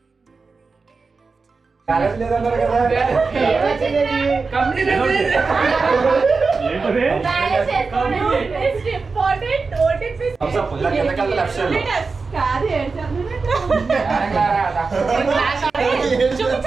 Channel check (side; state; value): left; quieter; 4.4 dB